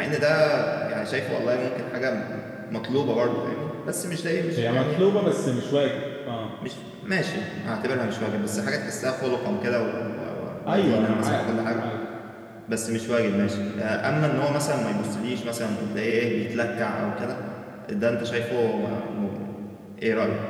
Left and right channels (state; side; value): identical; both; correlation 1.00